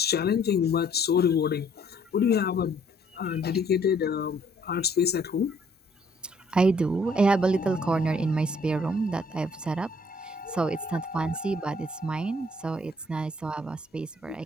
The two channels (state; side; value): normal; both; correlation 0.62